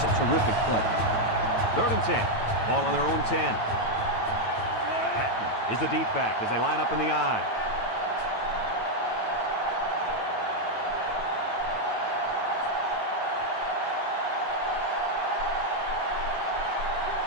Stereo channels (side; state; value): right; late; 9.0 ms